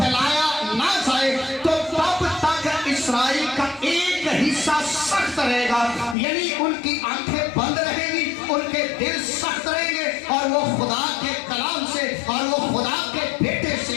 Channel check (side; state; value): right; drops out; at 6.2 s